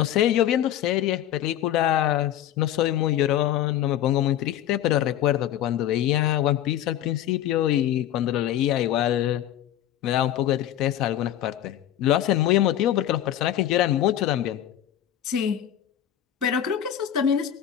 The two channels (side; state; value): right; quieter; 11.5 dB